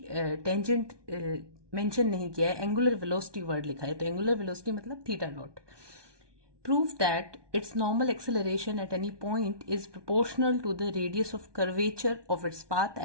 टेंजेंट मेंशन नहीं किया है, एंगुलर वेलोसिटी वर्ड लिखा है, तो एंगुलर वेलोसिटी मतलब theta dot. Prove that its normal acceleration at any point is proportional to the radius of curvature of its path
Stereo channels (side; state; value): left; late; 1.2 ms